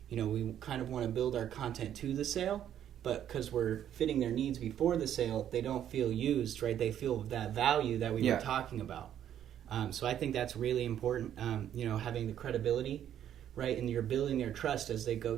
We kind of want to build our content to the sale, but because we're fitting their needs before the sale, they don't feel used, right? They feel that value that we were talking about. So I think that's really important, having the credibility, right? And you're building their trust as they go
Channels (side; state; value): left; quieter; 10.4 dB